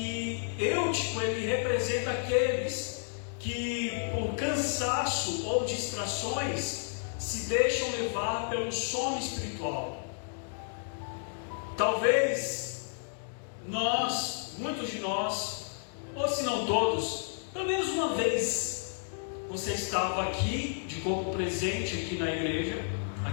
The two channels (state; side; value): silent; right; digital silence